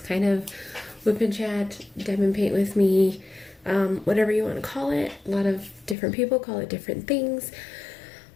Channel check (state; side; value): drops out; right; at 6.0 s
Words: kind of whip and chat, diamond paint with me, whatever you want to call it. A lot of different people call it different things.